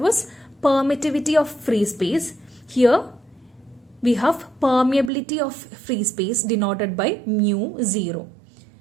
permittivity of free space. Here we have permeability of free space denoted by mu 0.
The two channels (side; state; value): left; drops out; at 5.1 s